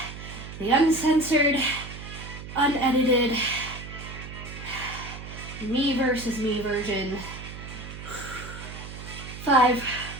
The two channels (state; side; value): noise; right; hum, 11 dB below the sound